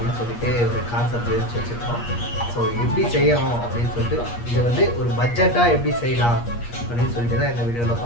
சொல்லிட்டு ஒரு கான்செப்ட் யோசிச்சு வச்சுருக்கோம். ஸோ எப்படி செய்யணும் அப்படின்னு சொல்லிட்டு, இது வந்து ஒரு பட்ஜெட்டாக எப்படி செய்யலாம் அப்படின்னு சொல்லிட்டு தான் இந்த வீடியோவில்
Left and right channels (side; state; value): right; late; 8.5 ms